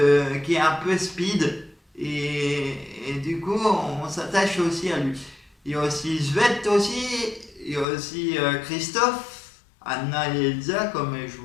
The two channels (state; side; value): drops out; right; at 7.9 s